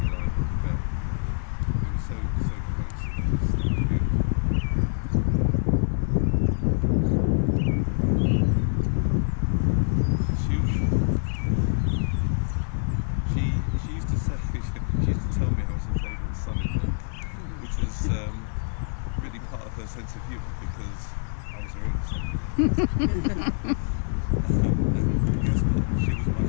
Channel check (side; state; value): right; silent; 61 dB below the other